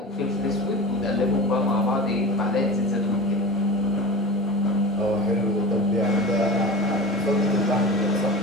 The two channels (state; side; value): normal; both; correlation 0.32